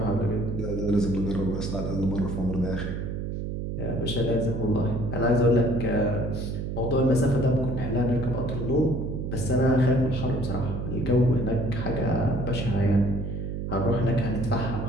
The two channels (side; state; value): right; noise; hum, 4 dB below the sound